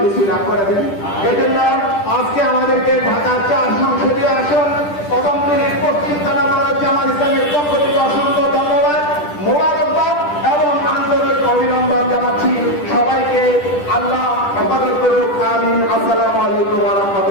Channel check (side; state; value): right; late; 10 ms